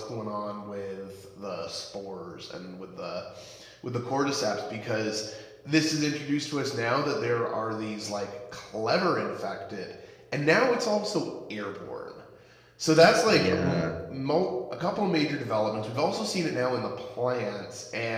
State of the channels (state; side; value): identical; both; correlation 1.00